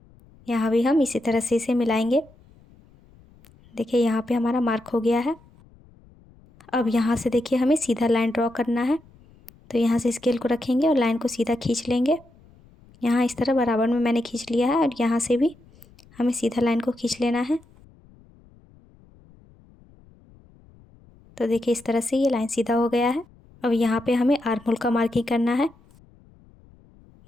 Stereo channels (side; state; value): left; noise; rumble, 27 dB below the sound